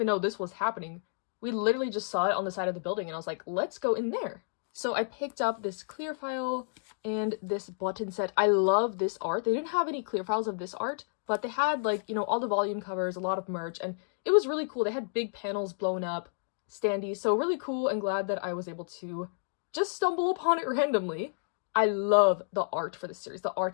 know this was happening. We literally just saw it on the side of the building, and I was like, let's go in there. So I picked up this clear file and this button set. I love this art. They didn't have any clear files of this art, but they had, like, you know, all the volume covers, a lot of merch, and it was really cool. They had big panels blown up, standees, so really cool, and glad that I was able to just stumble upon it randomly. I love the art for this series. The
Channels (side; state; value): right; silent; digital silence